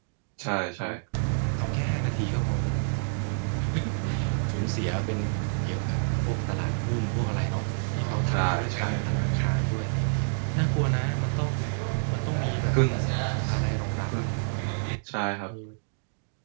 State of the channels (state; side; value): silent; left; digital silence